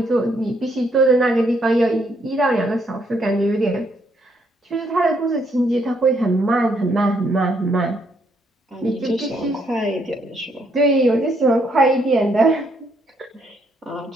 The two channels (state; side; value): normal; both; correlation 0.72